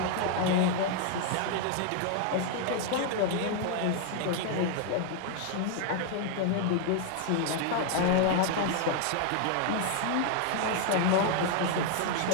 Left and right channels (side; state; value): both; different; correlation 0.00